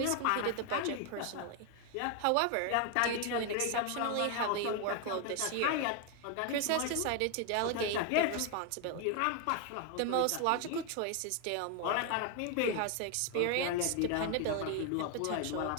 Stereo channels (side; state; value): both; different; correlation 0.01